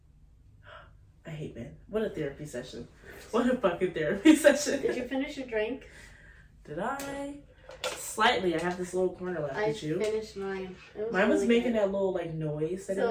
I hate men. What a therapy session. What a fucking therapy session. Did you finish your drink? Did I? Slightly. I have this little corner left. Did you? I finished mine. Mine was making that little like noise that so it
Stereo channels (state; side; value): identical; both; correlation 1.00